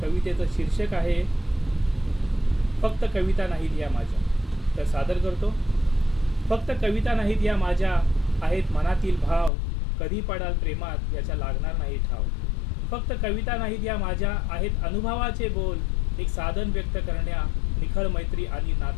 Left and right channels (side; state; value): right; drops out; at 9.5 s